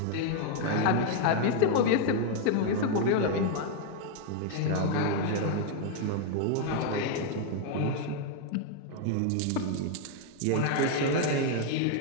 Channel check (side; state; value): both; different; correlation 0.00